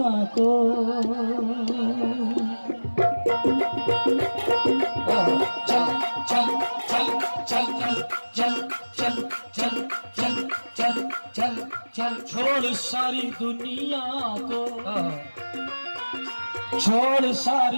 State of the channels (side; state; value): both; inverted; correlation -1.00